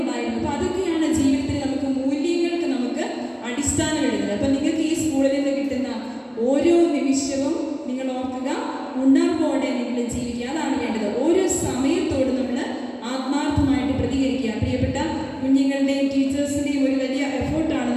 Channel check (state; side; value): identical; both; correlation 1.00